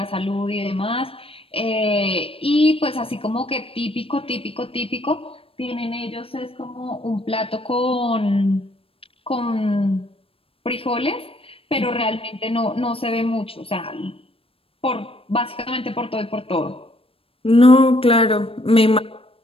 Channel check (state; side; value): late; right; 0.27 ms